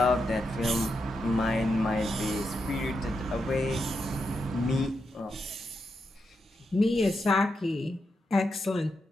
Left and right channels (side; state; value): both; normal; correlation 0.84